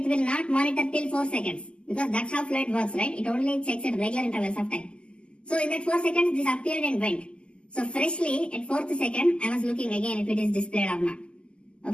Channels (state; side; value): late; right; 0.052 ms